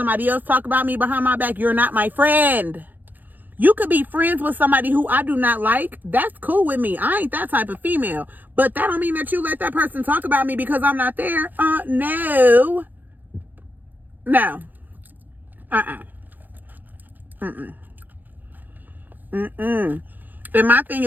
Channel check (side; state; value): left; late; 0.085 ms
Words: else talk about me behind my back, you're not my friend. You could be friends with somebody who I do not like. That's cool with me. I ain't that type of female. But that don't mean that you let that person talk about me because I'm not there. No. No. And my thing